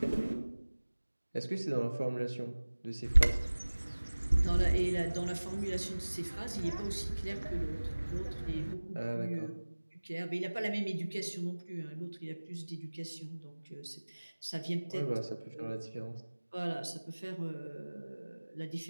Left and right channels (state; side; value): inverted; both; correlation -1.00